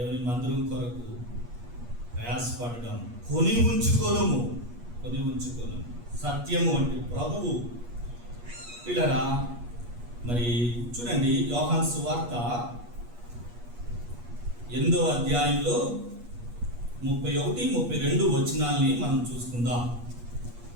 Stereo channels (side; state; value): left; late; 8.4 ms